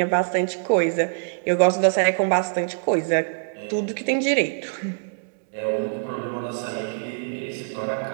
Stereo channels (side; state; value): left; silent; digital silence